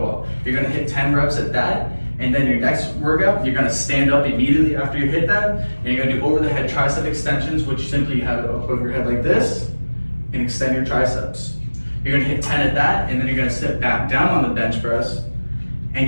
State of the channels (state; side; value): inverted; both; correlation -1.00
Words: up. You're gonna hit 10 reps at that, and then your next workout, you're gonna stand up immediately after you hit that, and you're gonna do over the head tricep extensions, which simply you have it up over your head like this, and extend your triceps. You're gonna hit 10 at that, and then you're gonna sit back down on the bench press, and